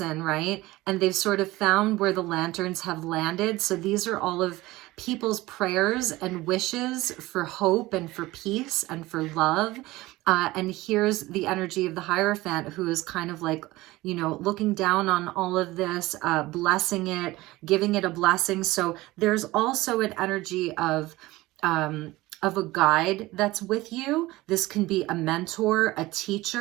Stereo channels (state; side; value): quieter; left; 19.0 dB